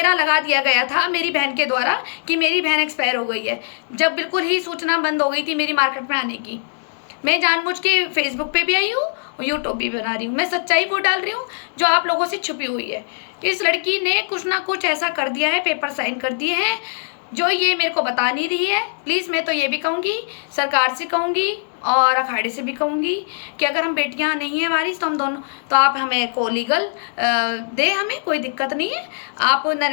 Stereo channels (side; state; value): right; silent; digital silence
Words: लगा दिया गया था मेरी बहन के द्वारा कि मेरी बहन एक्सपायर हो गई है, जब बिल्कुल ही सूचना बंद हो गई थी मेरी मार्केट में आने की। मैं जानबूझ के फेसबुक पे भी आई हूँ और यूट्यूब भी बना रही हूँ, मैं सच्चाई वो डाल रही हूँ जो आप लोगों से छुपी हुई है। इस लड़की ने कुछ ना कुछ ऐसा कर दिया है, पेपर साइन कर दिए हैं जो ये मेरे को बता नहीं रही है। प्लीज़ मैं तो ये भी कहूँगी, सरकार से कहूँगी और अखाड़े से भी कहूँगी कि अगर हम बेटियाँ नहीं हैं वारिस तो हम दोनों, तो आप हमें को लीगल दे, हमें कोई दिक्कत नहीं है। आप